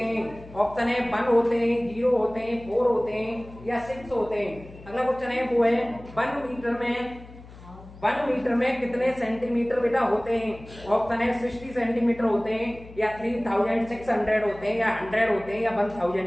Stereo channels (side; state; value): left; noise; hum, 19 dB below the sound